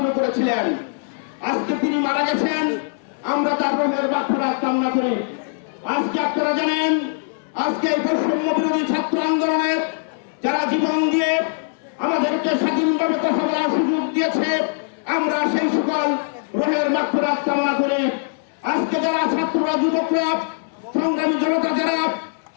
করেছিলেন। আজকে তিনি মারা গেছেন, আমরা তার রোহের মাগফিরাত কামনা করি। আজকে আপনারা জানেন, আজকে বৈষম্য বিরোধী ছাত্র আন্দোলনের যারা জীবন দিয়ে আমাদেরকে স্বাধীনভাবে কথা বলার সুযোগ দিয়েছে, আমরা সেই সকল রোহের মাগফিরাত কামনা করি। আজকে যারা ছাত্ররা, যুবকরা, সংগ্রামী জনতা যারা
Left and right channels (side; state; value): right; silent; 65 dB below the other